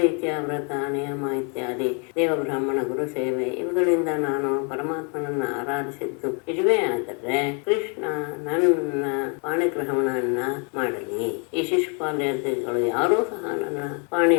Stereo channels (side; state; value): right; quieter; 36.8 dB